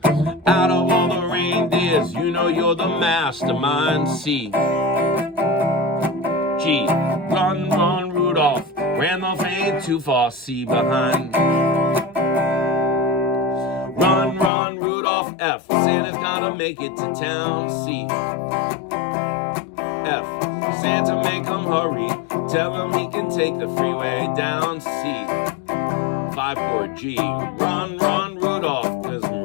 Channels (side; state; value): right; drops out; at 14.5 s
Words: Out of all the reindeers, you know you're the mastermind. C, G, run, run, Rudolph. Randolph ain't too far. C behind. Run, run, Rudolph. F, Santa's gotta make it to town. C, F, Santa make him hurry. Tell him he can take the freeway down. C, 5 chord G, run, run, Rudolph, 'cause I'm